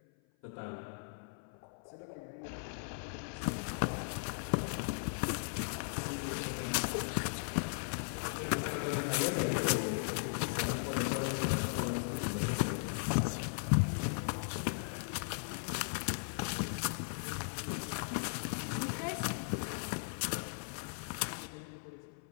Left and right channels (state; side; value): silent; right; 53 dB below the other